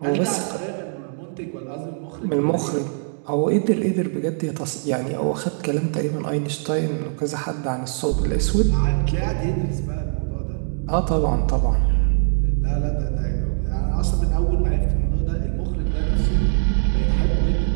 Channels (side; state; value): left; silent; digital silence